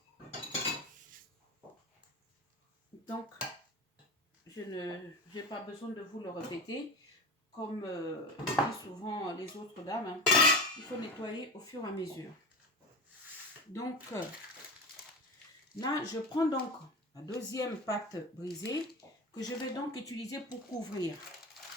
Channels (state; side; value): normal; both; correlation 0.27